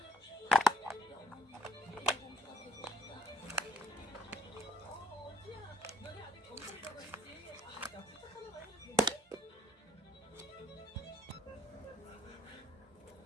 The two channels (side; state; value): both; normal; correlation 0.63